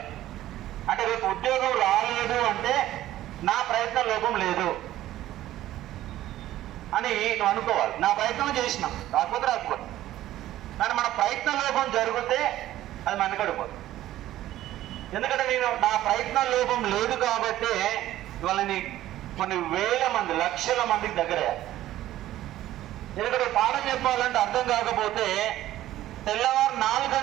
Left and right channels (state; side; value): quieter; left; 14.1 dB